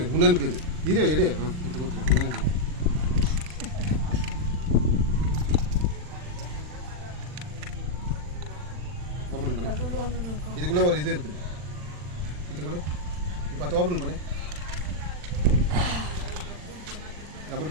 உனக்கு இது இரு எடு இது கொடுத்துரு. ஓப்பன் பண்ணு. இதுக்குள்ளே ஒரு இது இருக்குது, இது கூட இப்போ அதை ஓப்பன் பண்ணு. ஓப்பன்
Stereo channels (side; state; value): left; late; 40 ms